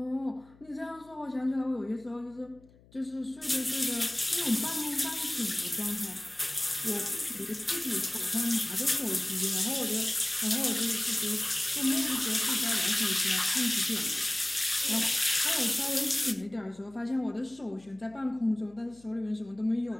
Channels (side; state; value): left; noise; hum, 26 dB below the sound